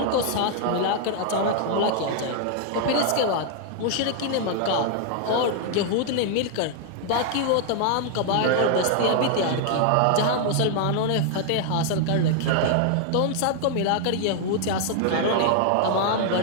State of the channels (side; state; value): both; different; correlation 0.00